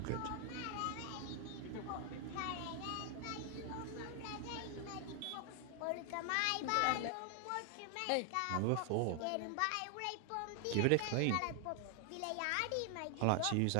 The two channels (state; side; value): different; both; correlation 0.00